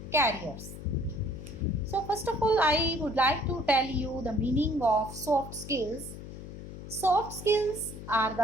careers. So, first of all, I would like to tell you the meaning of soft skills. Soft skills are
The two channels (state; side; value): noise; left; hum, 12 dB below the sound